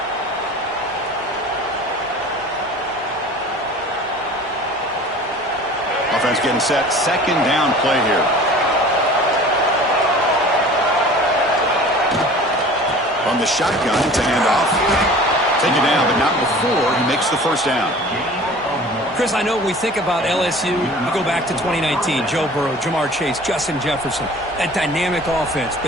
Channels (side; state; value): both; normal; correlation 0.43